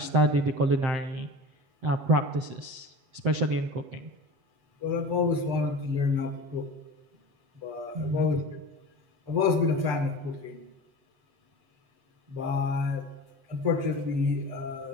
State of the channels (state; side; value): late; left; 7.9 ms